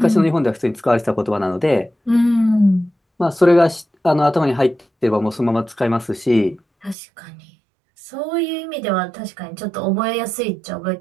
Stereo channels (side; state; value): left; drops out; at 7.0 s